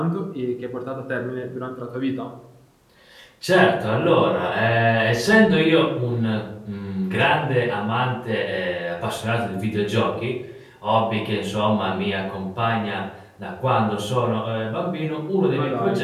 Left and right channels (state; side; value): identical; both; correlation 1.00